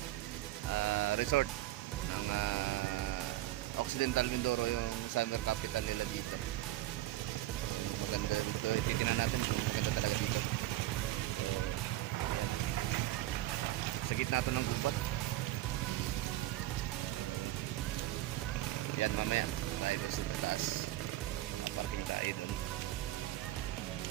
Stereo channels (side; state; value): left; quieter; 15.7 dB